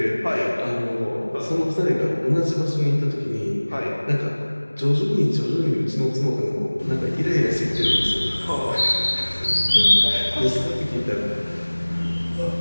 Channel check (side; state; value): both; inverted; correlation -1.00